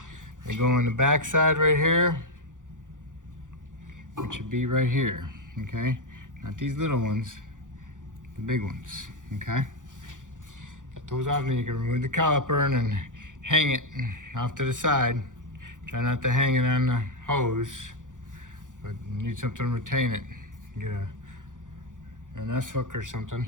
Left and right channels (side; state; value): left; late; 0.87 ms